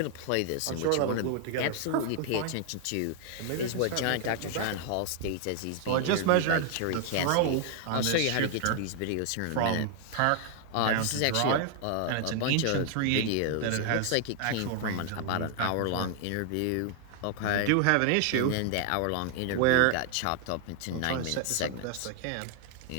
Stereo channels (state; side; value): different; both; correlation 0.00